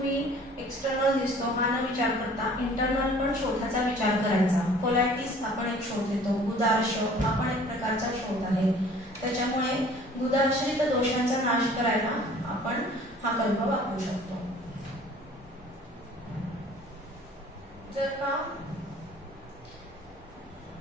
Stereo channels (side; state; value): both; normal; correlation 0.51